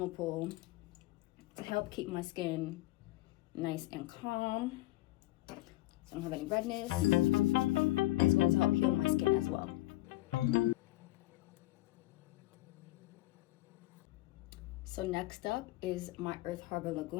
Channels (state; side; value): quieter; right; 17.9 dB